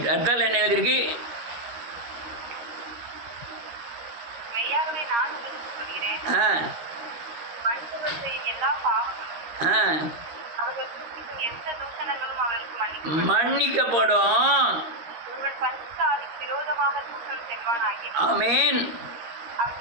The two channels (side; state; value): left; late; 13 ms